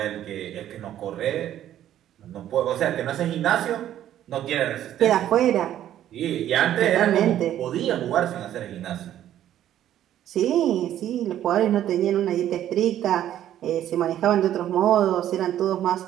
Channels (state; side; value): quieter; left; 11.7 dB